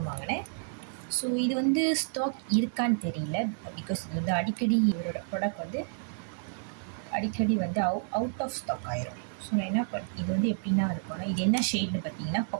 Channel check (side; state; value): left; silent; digital silence